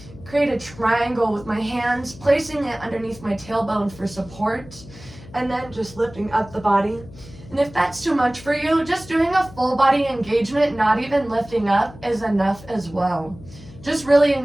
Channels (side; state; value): left; noise; hum, 19 dB below the sound